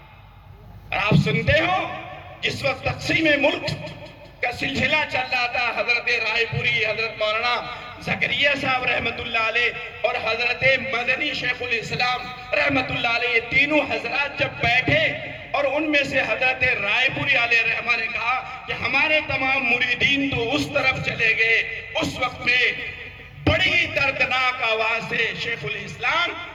آپ سنتے ہو جس وقت تقسیم ملک کا سلسلہ چل رہا تھا، حضرت رائے پوری، حضرت مولانا زکریا صاحب رحمت اللہ علیہ اور حضرت مدنی شیخ الاسلام رحمت اللہ علیہ، یہ تینوں حضرات جب بیٹھے، اور ان میں سے حضرت رائے پوری علیہ رحمہ نے کہا کہ ہمارے تمام مریدین تو اس طرف چلے گئے۔ اس وقت میں بڑی دردناک دردناک آواز سے شیخ الاسلام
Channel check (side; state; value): both; identical; correlation 1.00